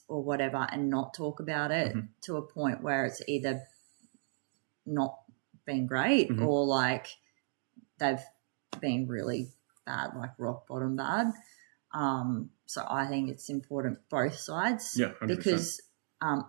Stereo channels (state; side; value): silent; left; digital silence